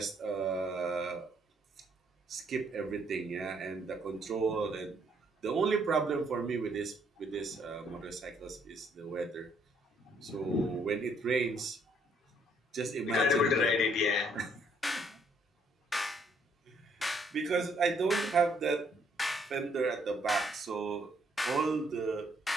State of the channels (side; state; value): both; normal; correlation 0.68